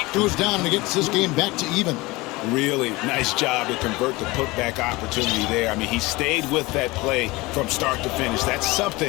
goes down and it gets this game back to even. Really nice job to convert the putback opportunity there. I mean, he stayed with that play from start to finish. That's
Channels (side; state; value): right; quieter; 22.1 dB